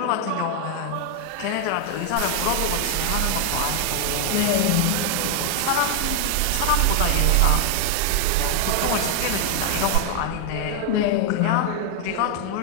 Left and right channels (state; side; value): different; both; correlation 0.00